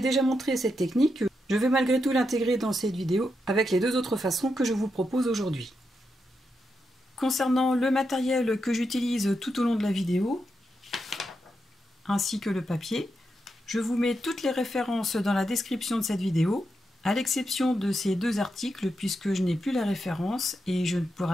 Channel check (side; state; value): both; normal; correlation 0.85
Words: montré cette technique, je vais malgré tout l'intégrer dans cette vidéo avec les deux autres façons que je vous propose aujourd'hui. Concernant le matériel que j'utilise tout au long de la vidéo, ainsi que le papier, je vous mets toutes les références dans la description de cette vidéo, à l'exception de ces deux articles puisque je n'ai plus la référence et je ne